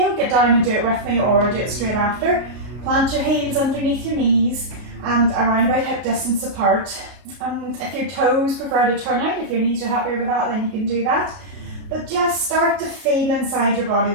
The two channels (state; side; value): late; left; 33 ms